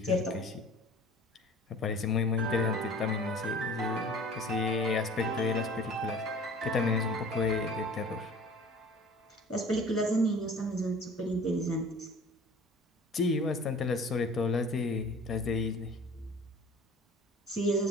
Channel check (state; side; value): normal; both; correlation 0.45